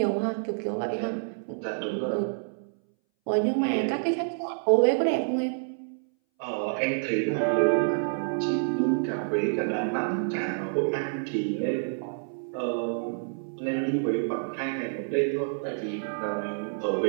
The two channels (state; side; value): silent; left; 59 dB below the other